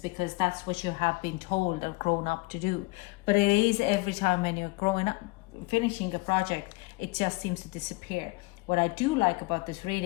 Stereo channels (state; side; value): quieter; right; 24.2 dB